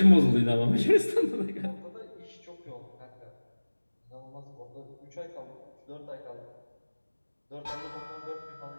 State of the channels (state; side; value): inverted; both; correlation -1.00